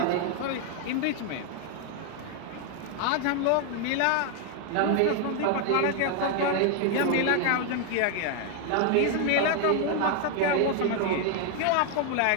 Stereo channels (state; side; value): different; both; correlation 0.00